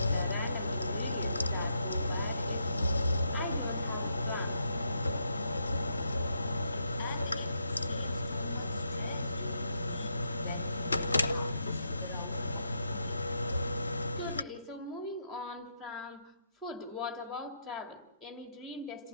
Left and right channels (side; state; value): both; inverted; correlation -0.79